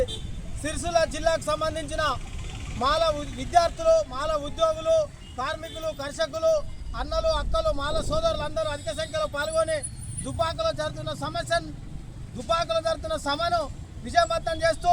సిరిసిల్ల జిల్లాకు సంబంధించిన మాల విద్యార్థులు, మాల ఉద్యోగులు, కార్మికులు, కర్షకులు, అన్నలు, అక్కలు, మాల సోదరులందరూ అధిక సంఖ్యలో పాల్గొని దుబ్బాకలో జరుగుతున్న సభను విజయవంతం చేస్తూ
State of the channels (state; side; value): identical; both; correlation 1.00